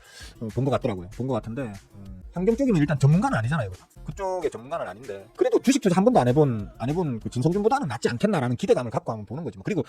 본 것 같더라고요. 본 것 같은데 환경 쪽이면 일단 전문가는 아니잖아요. 그쪽의 전문가는 아닌데 그래도 주식 투자 한 번도 안 해본 그 진성준보다는 낫지 않겠나라는 기대감을 갖고 한번 보는 거지. 그리고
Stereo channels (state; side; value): identical; both; correlation 1.00